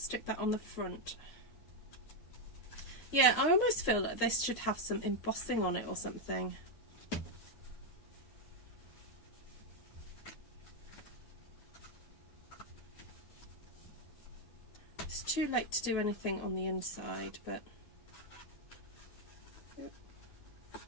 that on the front. Yeah, I almost feel like this should have some embossing on it or something. It's too late to do anything on the inside, but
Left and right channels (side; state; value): right; late; 9.2 ms